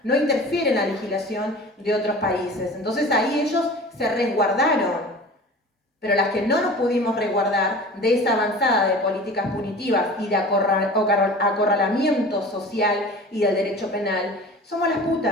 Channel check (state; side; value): normal; both; correlation 0.39